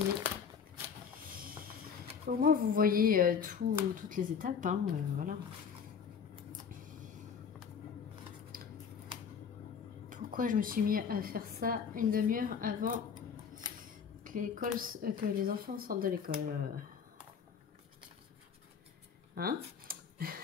Au moins vous voyez toutes les étapes, hein, voilà. Pourquoi je me suis mis à faire ça une demi-heure avant que les enfants sortent de l'école? Hein?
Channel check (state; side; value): quieter; right; 6.7 dB